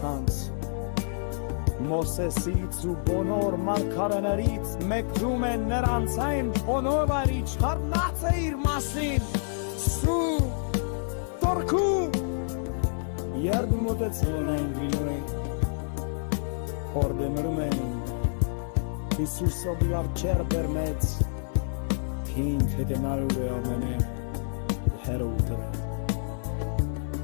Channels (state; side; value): silent; right; digital silence